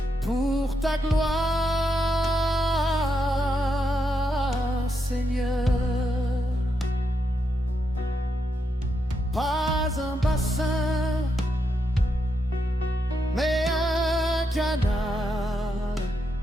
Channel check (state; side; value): normal; both; correlation 0.82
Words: pour ta gloire, Seigneur. Pas un bassin, mais un canal